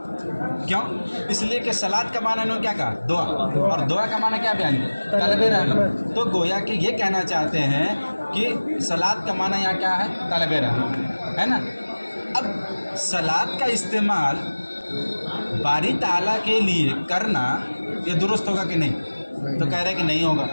کیوں؟ اس لیے کہ صلاۃ کا معنی انہوں نے کیا کہا؟ دعا. اور دعا کا معنی کیا بیان کیا؟ طلب رحمت. تو گویا کہ یہ کہنا چاہتے ہیں کہ صلاۃ کا معنی یہاں کیا ہے؟ طلب رحمت ہے نا. اب صلاۃ کا استعمال باری تعالیٰ کے لیے کرنا یہ درست ہوگا کہ نہیں؟ تو کہہ رہے کہ نہیں ہوگا.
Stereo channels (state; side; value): inverted; both; correlation -1.00